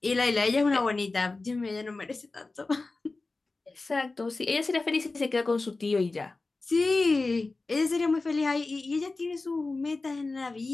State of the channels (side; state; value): right; quieter; 3.5 dB